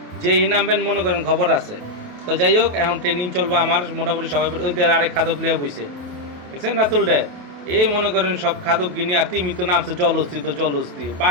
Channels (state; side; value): late; left; 28 ms